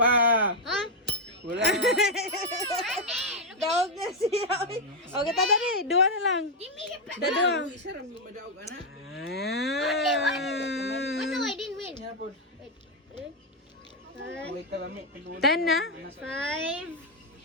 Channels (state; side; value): normal; both; correlation 0.01